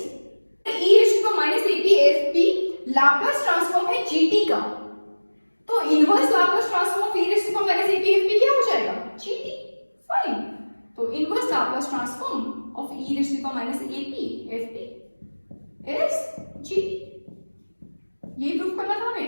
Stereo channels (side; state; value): both; inverted; correlation -1.00